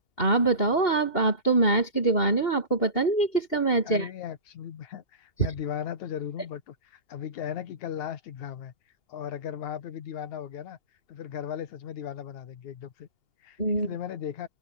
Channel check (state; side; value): late; right; 2.8 ms